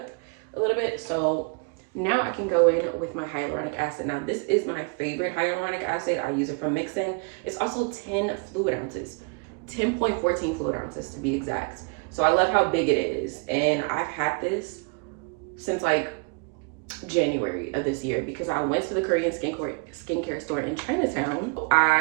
a little bit, so now I can go in with my hyaluronic acid. Now, this is my favorite hyaluronic acid. I use it for mixing. It's also 10 fluid ounces. 10.14 fluid ounces to be exact. So I love how big it is. And I've had this since like January of this year because I went to the Korean skincare store in Chinatown.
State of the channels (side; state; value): left; quieter; 34.9 dB